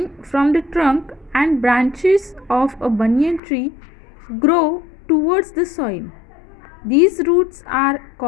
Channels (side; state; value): right; drops out; at 3.4 s